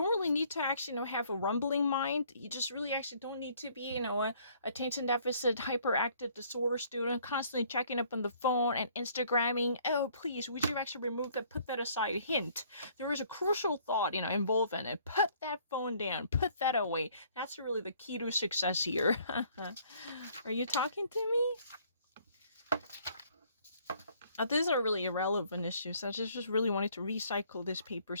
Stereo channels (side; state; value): both; inverted; correlation -0.61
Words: really need to actually have a rumbling mind. You just really actually don't need to be a attention deficit hyperactive disorder student constantly checking up on the phone and Instagramming. Oh, please, would you actually remove that? Put that aside. Hint, there is a crucial thought involved in it. Put that phone down. Put that away. That's really the key to success here. Are you talking to me? These are really irrelevant issues. I just really wanted to recycle this paper